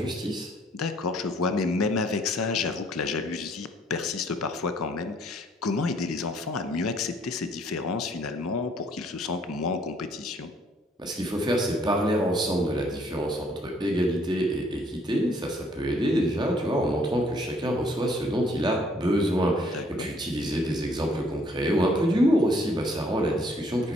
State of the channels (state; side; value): normal; both; correlation 0.63